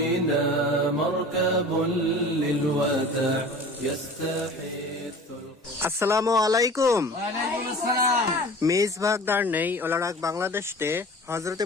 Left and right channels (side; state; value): both; normal; correlation 0.40